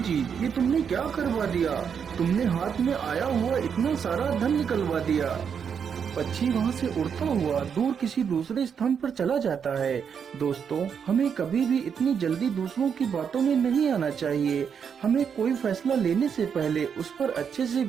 ये तुमने क्या करवा दिया? तुमने हाथ में आया हुआ इतना सारा धन निकलवा दिया। पक्षी वहाँ से उड़ता हुआ दूर किसी दूसरे स्थान पर चला जाता है। दोस्तों, हमें कभी भी इतनी जल्दी दूसरों की बातों में नहीं आना चाहिए। हमें कोई फैसला लेने से पहले उस पर अच्छे से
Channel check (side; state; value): left; quieter; 7.1 dB